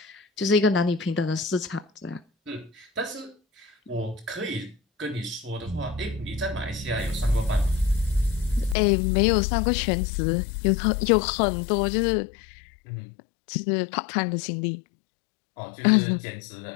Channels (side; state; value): right; drops out; at 8.8 s